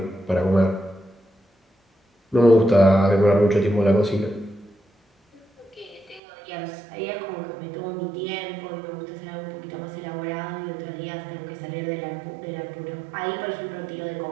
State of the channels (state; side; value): drops out; left; at 6.2 s